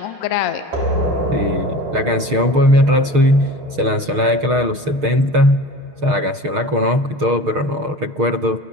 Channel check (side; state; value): left; late; 6.5 ms